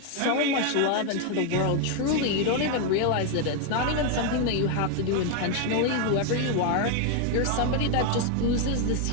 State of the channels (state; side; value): different; both; correlation 0.01